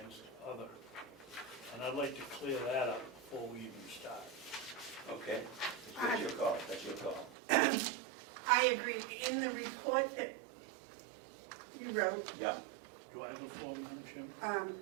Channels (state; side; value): drops out; left; at 7.4 s